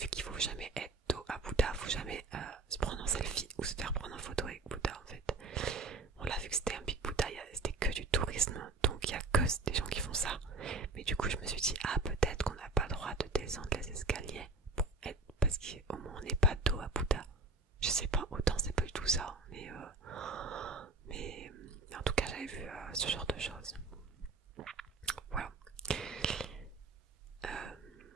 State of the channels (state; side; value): quieter; left; 3.5 dB